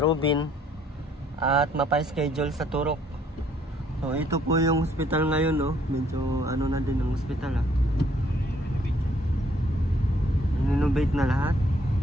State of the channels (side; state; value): both; normal; correlation 0.64